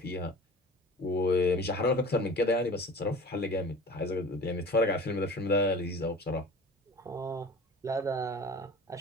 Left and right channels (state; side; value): normal; both; correlation 0.40